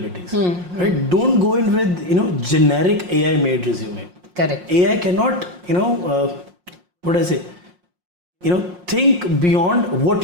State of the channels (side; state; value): left; late; 5.6 ms